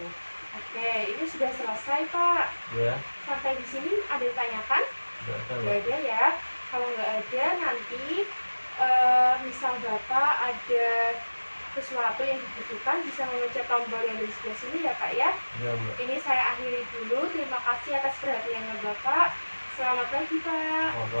Oke, ini sudah selesai Pak. ya. Sampai di sini ada yang tanyakan? Nggak ada Nggak Mbak. ada ya. Kalau nggak ada nanti misal Bapak ada sesuatu yang dibutuhkan bisa memencet tombol yang di sebelah sini ya Pak ya. Ya Mbak. Ini saya akhiri dulu. Terima kasih atas perhatiannya Bapak. Selamat pagi Pak.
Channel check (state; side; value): inverted; both; correlation -1.00